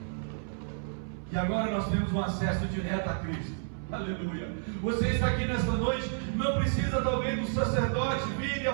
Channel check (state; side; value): silent; left; 57 dB below the other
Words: e agora nós temos um acesso direto a Cristo. Aleluia. Você está aqui nesta noite, não precisa talvez do sacerdote vir e